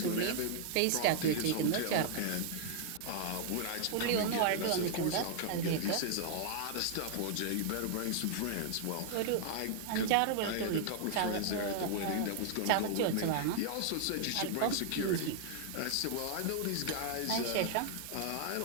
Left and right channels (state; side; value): different; both; correlation 0.00